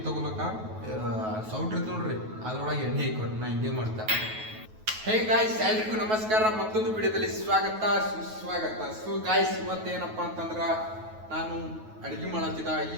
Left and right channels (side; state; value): left; late; 9.3 ms